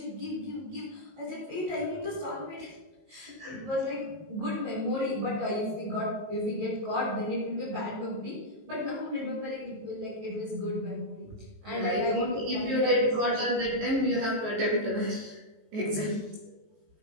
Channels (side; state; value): left; late; 19 ms